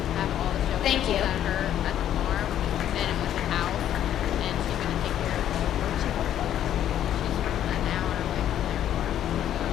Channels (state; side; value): quieter; right; 11.0 dB